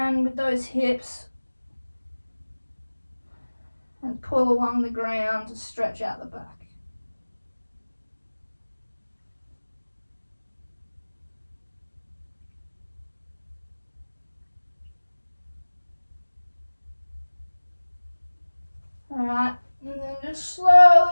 with those hips and pull along the ground to stretch out the back. Alright, and then just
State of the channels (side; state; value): both; inverted; correlation -1.00